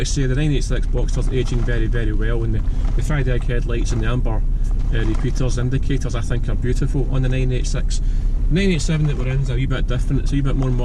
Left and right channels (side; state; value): both; identical; correlation 1.00